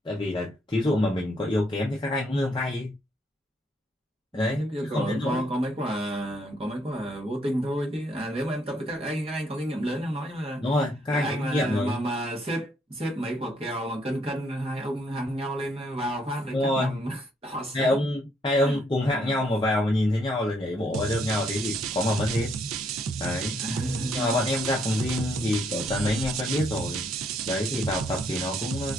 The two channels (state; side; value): normal; both; correlation 0.70